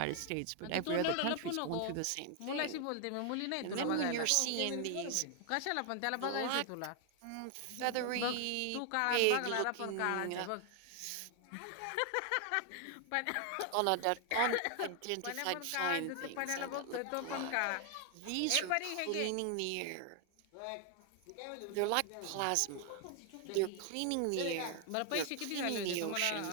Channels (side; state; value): both; different; correlation 0.00